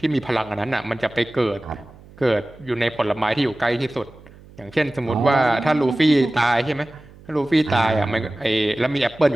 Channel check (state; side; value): noise; right; hum, 22 dB below the sound